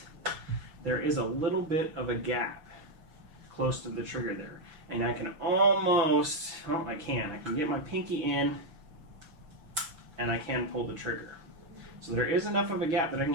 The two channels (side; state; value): left; late; 6.1 ms